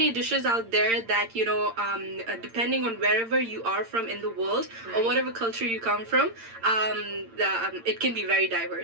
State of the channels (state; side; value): late; left; 8.8 ms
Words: dishes out there that depending on wherever you are from in the world or whatever culture you come from. It can be very